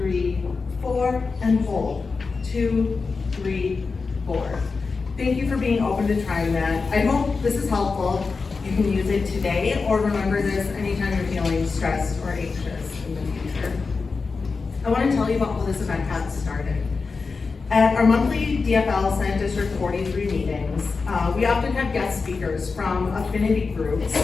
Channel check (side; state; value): right; quieter; 4.5 dB